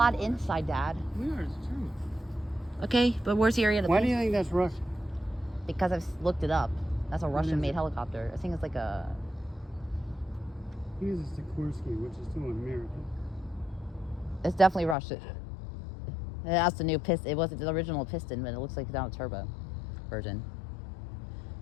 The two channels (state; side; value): drops out; right; at 15.0 s